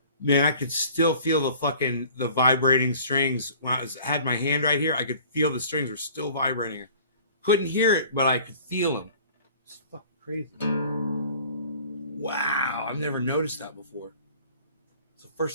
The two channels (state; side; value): inverted; both; correlation -0.48